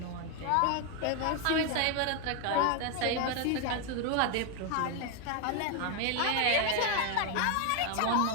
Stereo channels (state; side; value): different; both; correlation 0.01